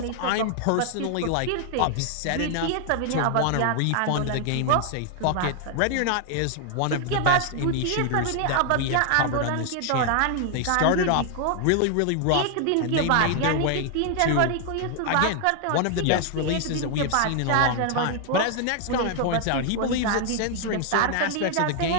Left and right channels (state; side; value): different; both; correlation 0.00